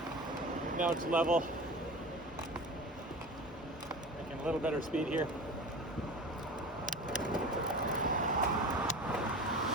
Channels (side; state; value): both; normal; correlation 0.34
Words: Now it's level. Making a little better speed here.